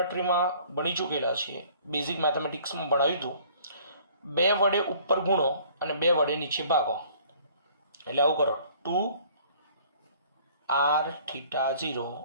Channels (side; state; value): both; inverted; correlation -0.56